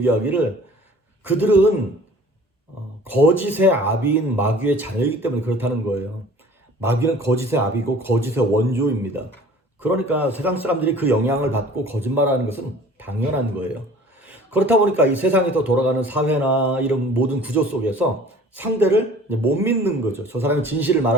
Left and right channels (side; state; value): both; normal; correlation 0.48